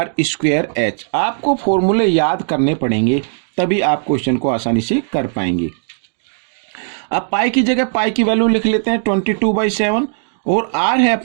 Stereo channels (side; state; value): left; silent; digital silence